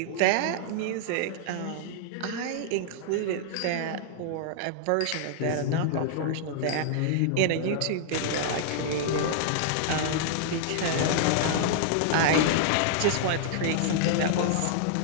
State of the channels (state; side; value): different; both; correlation -0.01